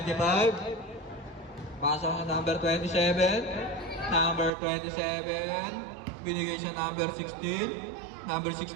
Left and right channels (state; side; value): drops out; left; at 4.5 s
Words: pasok na number 27. Number 27, binigay sa number 16. Number